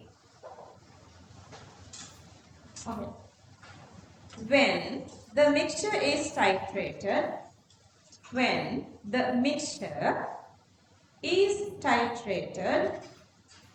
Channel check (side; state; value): both; identical; correlation 1.00